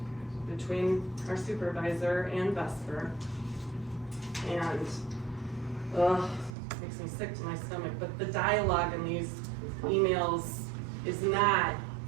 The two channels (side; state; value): left; drops out; at 6.6 s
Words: Between our supervisor and Vesper. And, makes me sick to my stomach, but the dialogue in these emails is not,